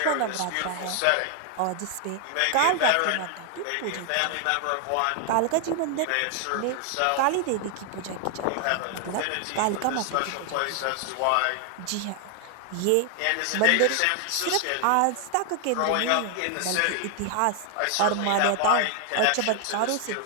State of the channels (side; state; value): both; different; correlation 0.00